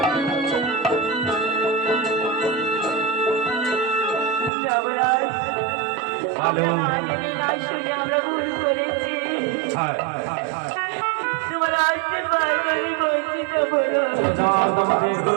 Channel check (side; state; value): left; drops out; at 4.5 s